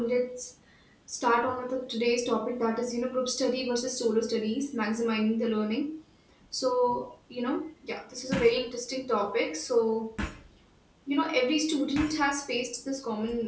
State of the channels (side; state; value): both; identical; correlation 1.00